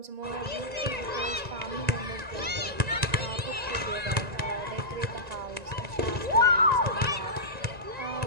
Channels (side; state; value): left; late; 1.9 ms